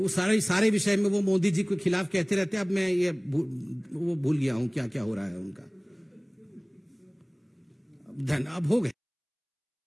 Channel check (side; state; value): both; identical; correlation 1.00